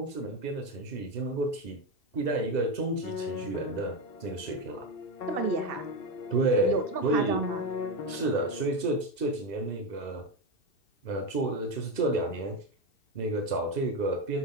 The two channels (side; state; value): right; late; 2.7 ms